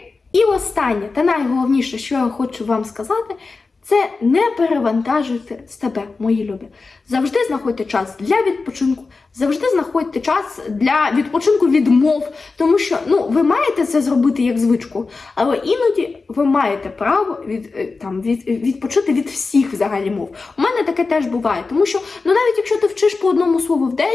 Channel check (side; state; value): right; quieter; 4.1 dB